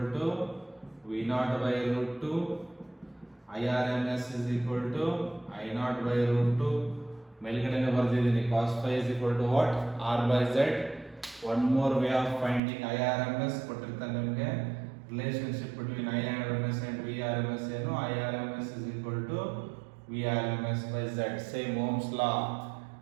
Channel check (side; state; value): left; drops out; at 12.6 s